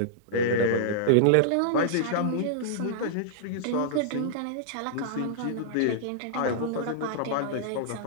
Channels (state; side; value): different; both; correlation -0.02